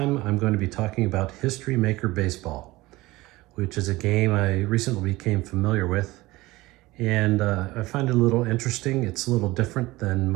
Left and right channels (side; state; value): left; quieter; 19.7 dB